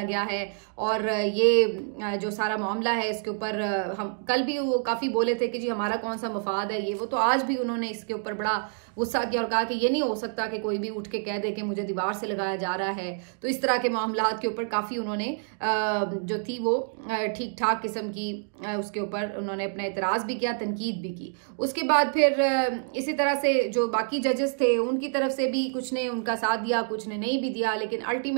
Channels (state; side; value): silent; left; 60 dB below the other